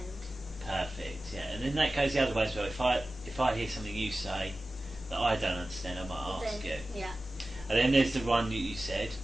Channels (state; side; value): normal; both; correlation 0.96